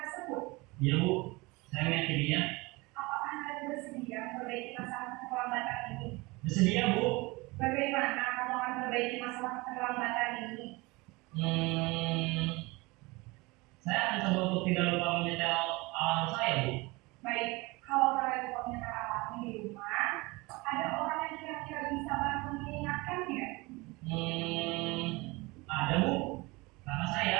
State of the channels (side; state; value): left; quieter; 24.0 dB